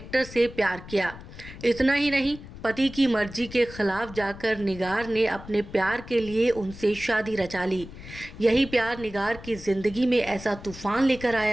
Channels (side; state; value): left; noise; rumble, 15 dB below the sound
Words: से प्यार किया। इतना ही नहीं, पति की मर्जी के खिलाफ जाकर निगार ने अपने प्यार के लिए उनसे शादी रचा ली। यही प्यार निगार की ज़िंदगी में ऐसा तूफान लेकर